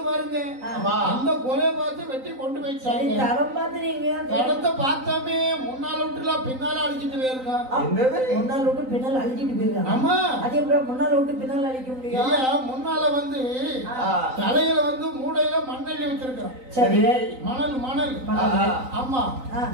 பாருங்க. அந்த கொலையை பார்த்து வெட்டி கொண்டு போயிட்டாங்க. தடம் பாத்துறீங்க? தடத்தை பார்த்தாமே முன்னால விட்டுல பின்னால அழிச்சிட்டு போயிருங்க. முன்னால விட்டு பின்னால் அழிச்சிட்டு போயிருக்காங்க. ஆமா. அதே முன்னால விட்டு பின்னால் அழிக்க முடியும். முன்னால வந்து தலையில வந்து மூடையில மண்ணெண்ணி வச்சிருக்கான். சரி. மணல் மணல். ஆமா.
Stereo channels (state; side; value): late; left; 3.9 ms